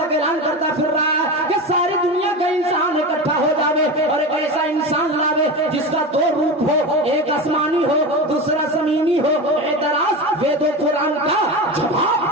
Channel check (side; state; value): both; normal; correlation 0.24